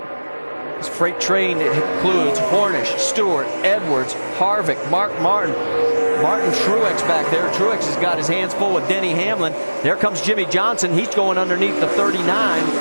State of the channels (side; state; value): both; inverted; correlation -1.00